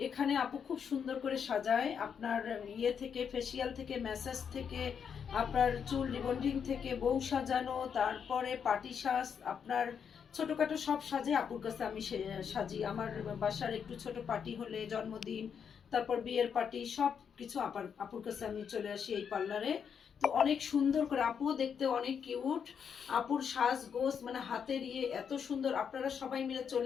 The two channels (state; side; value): quieter; right; 7.2 dB